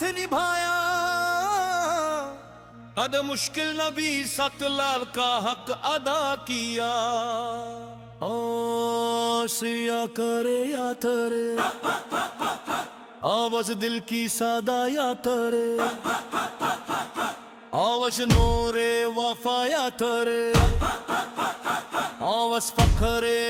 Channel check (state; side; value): identical; both; correlation 1.00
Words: نبھایا، ہر مشکل نبی سات لال کا حق ادا کیا۔ سیا کرے یا ترے آواز دل کی سادہ یا ترے، آواز نور وفا یا ترے، آواز فخر